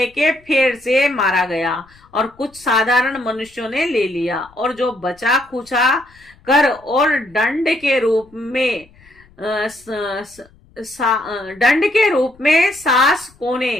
के फेर से मारा गया और कुछ साधारण मनुष्यों ने ले लिया और जो बचा खुचा कर और दंड के रूप में सास को ने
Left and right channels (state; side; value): noise; left; rumble, 29 dB below the sound